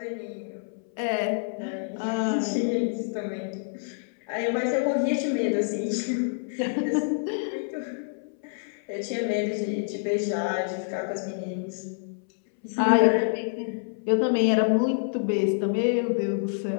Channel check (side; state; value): right; silent; 60 dB below the other